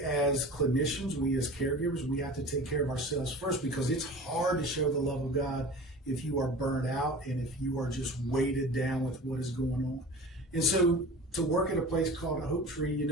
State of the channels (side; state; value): both; normal; correlation 0.37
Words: clinicians, we as caregivers, we have to take care of ourselves first, because it's hard to show the love of God if you are burned out and if you are just weighted down with what is going on. And so to work at a place called a Hopetree,